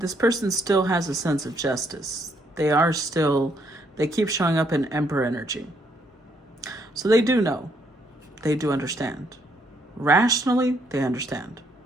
person still has a sense of justice. They keep showing up in Emperor energy. So they do know. They do understand. Rationally, they understand.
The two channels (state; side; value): normal; both; correlation 0.71